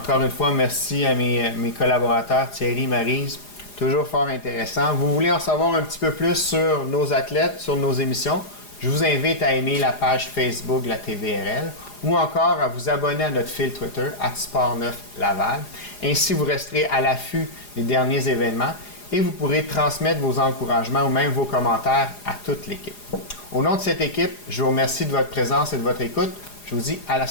une fois, merci à mes collaborateurs, Thierry, Maryse. Toujours fort intéressant. Vous voulez en savoir un petit peu plus sur nos athlètes, sur nos émissions? Je vous invite à aimer la page Facebook de la TVRL ou encore à vous abonner à notre fil Twitter, @Sport9Laval. Ainsi, vous resterez à l'affût des derniers événements et vous pourrez transmettre vos encouragements ou même vos commentaires à toute l'équipe. Au nom de cette équipe, je vous remercie de votre présence et de votre écoute. Je vous dis à la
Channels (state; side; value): late; right; 4.9 ms